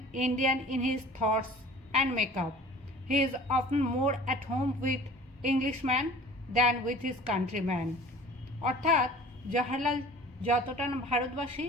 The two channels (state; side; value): normal; both; correlation 0.44